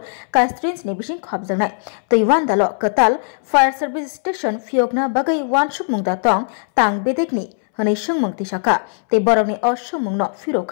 कनस्टिट्युएन्सिनि बिसिं खबजानाय तैवानदाल कताल फायर सार्भिस स्टेशन फियोगना बागै वानसुक मुंगदा तंग तांग बेदेकनि हनै सुंमुं तिसाका तै बरकनि असुंमुंनो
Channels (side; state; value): right; silent; 67 dB below the other